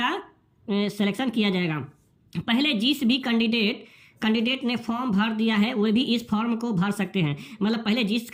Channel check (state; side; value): identical; both; correlation 1.00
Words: सिलेक्शन किया जाएगा। पहले जिस भी कैंडिडेट ने फॉर्म भर दिया है वे भी इस फॉर्म को भर सकते हैं। मतलब पहले जिस